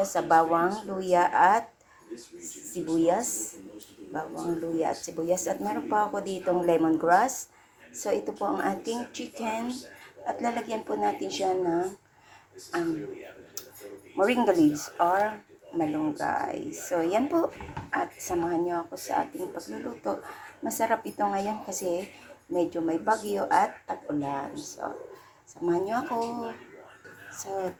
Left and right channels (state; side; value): identical; both; correlation 1.00